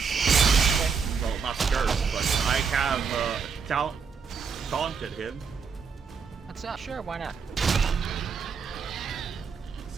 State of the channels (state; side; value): quieter; left; 5.9 dB